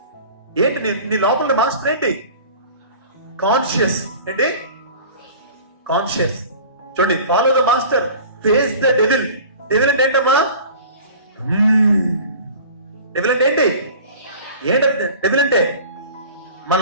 ఏంటి నీ లోపల మాస్టర్ ఏంటి? కాన్షియస్. ఏంటి కాన్షియస్? చూడండి, follow the master, face the devil. Devil అంటే ఏంటమ్మా? డెవిల్ అంటే ఏంటి? ఏంటంటే డెవిల్ అంటే మన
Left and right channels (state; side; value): inverted; both; correlation -0.42